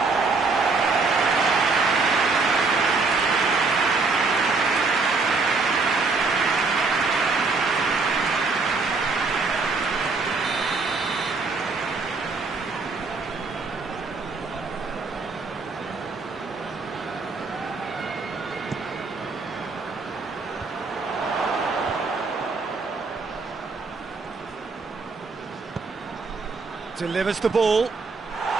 Delivers the ball.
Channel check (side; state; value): left; quieter; 4.1 dB